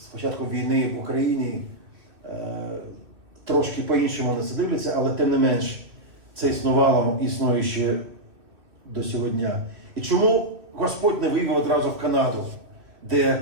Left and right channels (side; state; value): left; late; 2.4 ms